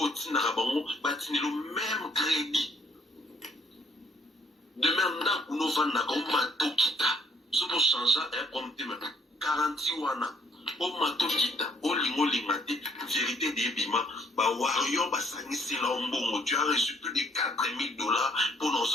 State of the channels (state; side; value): normal; both; correlation 0.65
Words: Narabango, batini le même crédit. Demain, on a un mato kita. Ce pour changer, un compte même. 40 wana. O mato kita. O lingo lingate. Vérité des bima. Ba wario ba sanisi la ombongo. Tu as reçu plus de $4,000 pour nos